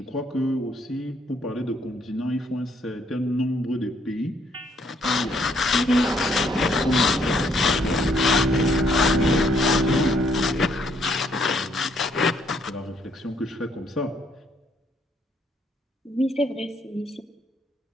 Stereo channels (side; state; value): both; normal; correlation 0.69